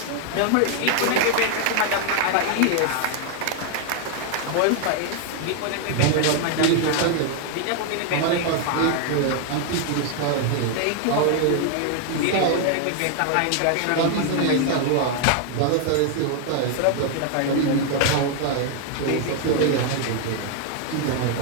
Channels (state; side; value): different; both; correlation 0.00